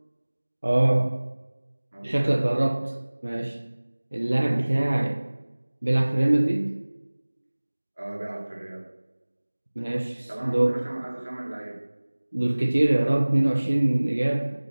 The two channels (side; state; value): both; inverted; correlation -1.00